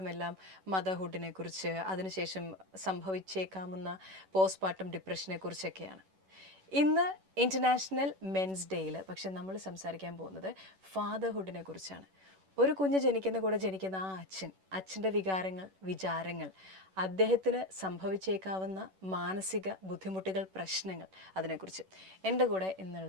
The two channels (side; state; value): left; late; 11 ms